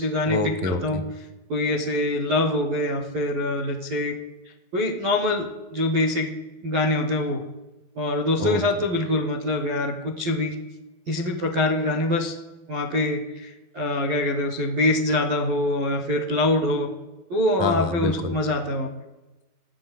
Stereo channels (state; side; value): late; left; 12 ms